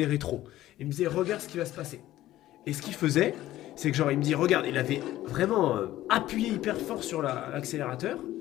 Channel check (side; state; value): right; quieter; 14.6 dB